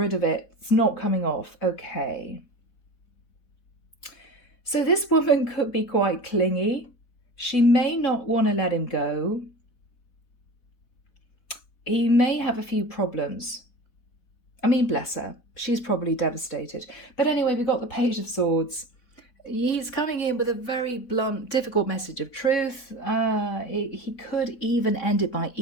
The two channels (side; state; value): right; late; 4.1 ms